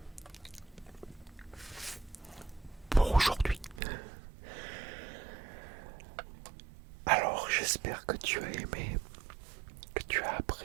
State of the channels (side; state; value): left; drops out; at 3.8 s